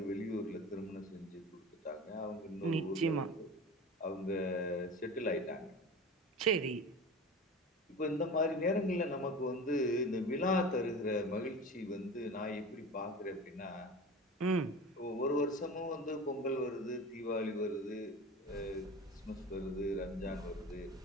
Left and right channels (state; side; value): normal; both; correlation 0.33